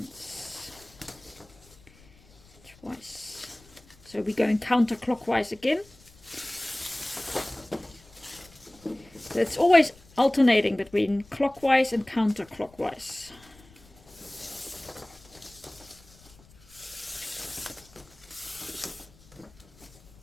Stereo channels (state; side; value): noise; left; rumble, 26 dB below the sound